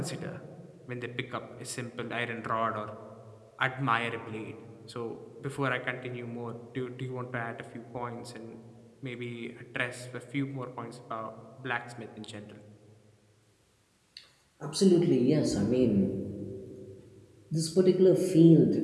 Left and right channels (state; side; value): identical; both; correlation 1.00